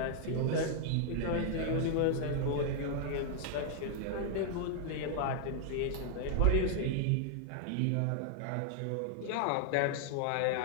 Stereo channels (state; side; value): different; both; correlation 0.00